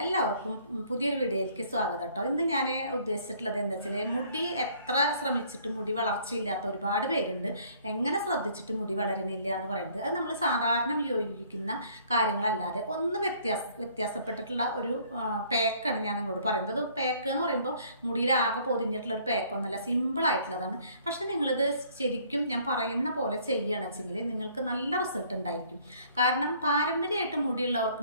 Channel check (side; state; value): both; inverted; correlation -0.59